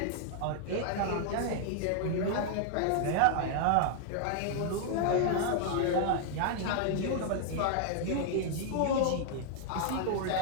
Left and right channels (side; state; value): both; different; correlation 0.00